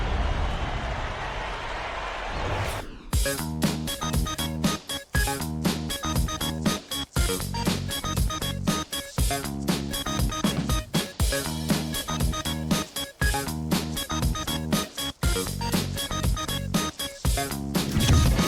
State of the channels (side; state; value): both; identical; correlation 1.00